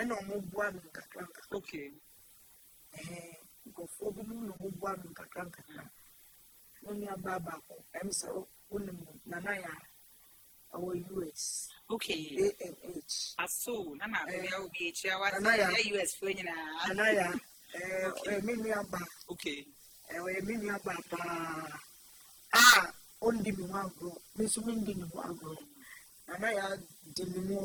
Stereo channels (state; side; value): identical; both; correlation 1.00